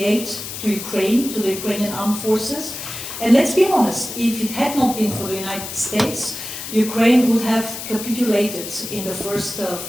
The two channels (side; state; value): left; noise; hiss, 8 dB below the sound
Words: aid to Ukraine, to the Ukrainian armed forces. And let's be honest, if it had not been for the United States, Ukraine would have capitulated in the first